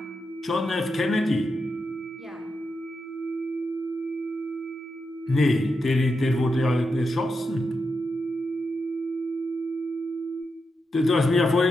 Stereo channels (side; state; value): both; normal; correlation 0.86